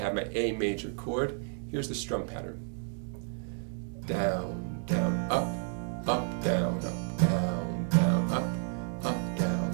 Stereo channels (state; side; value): silent; left; 57 dB below the other